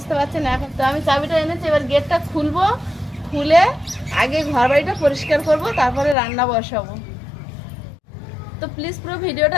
পারছেন। এখন তো আমি চাবিটা এনেছি, এবার গেটটা খুলবো, খুলে আগে ঘর বাড়িটা পরিষ্কার করব, তারপরে রান্না বসাবো। তো প্লিজ পুরো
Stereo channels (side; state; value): right; drops out; at 6.2 s